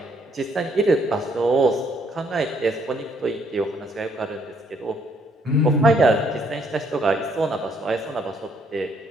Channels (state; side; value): normal; both; correlation 0.68